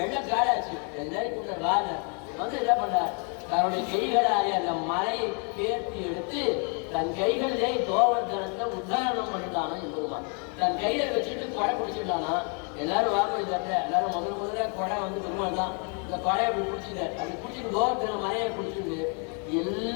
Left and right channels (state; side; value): quieter; right; 38.4 dB